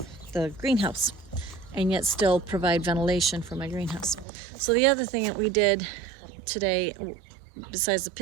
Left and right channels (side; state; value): left; drops out; at 4.2 s